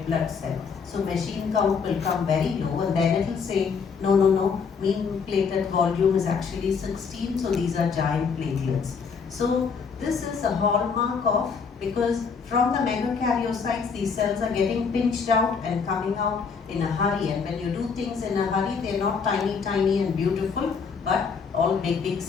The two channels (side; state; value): right; quieter; 5.7 dB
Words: blood cell. So machine count will come very low, and then it will say, no, mean platelet volume is actually 16, so these are giant platelets. So this is a hallmark of, because from the megakaryocytes, these cells are getting pinched out and coming out in a hurry. And when you do things in a hurry, they're not tiny and beautiful, but all big